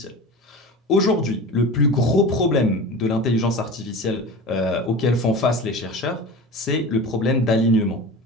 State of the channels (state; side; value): normal; both; correlation 0.32